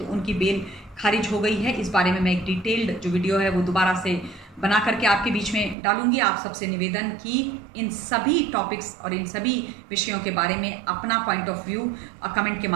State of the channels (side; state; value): left; drops out; at 5.8 s